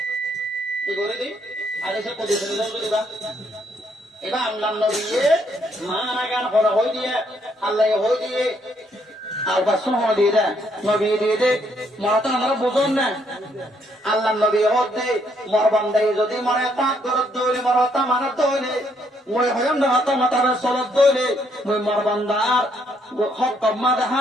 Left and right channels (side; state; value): both; normal; correlation 0.71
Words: কি করে দিই হাদিসে কুদসি দিবা এবার আল্লাহ নবী মানা গান হলো হই দিয়ে আল্লাহ হই দিয়ে আর বাসন হলো দিয়ে দে নবী দিয়ে দে মরা তো আমরা বুঝুন না আল্লাহ নবী হতে মোর বান্দা যদি মরা তাত গরব ধরে মরা তা মানা ধরে মই হয়ম না হাতা মাতারে সলত দইলে মই মোর বান্দার হক কম্মা দেখা